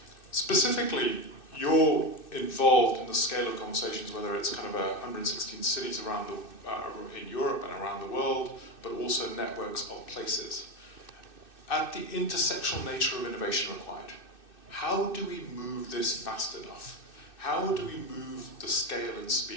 Specifically, you're involved in the scale of conversations, whether it's kind of 116 cities around in Europe and around the world, but also networks of places. At the intersectional nature of innovation required, how do we move this fast enough? How do we move the scale and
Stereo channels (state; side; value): late; right; 2.6 ms